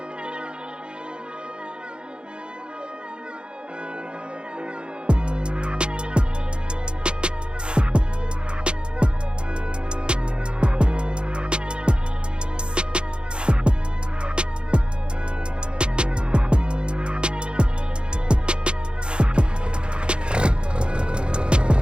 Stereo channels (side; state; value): left; late; 0.053 ms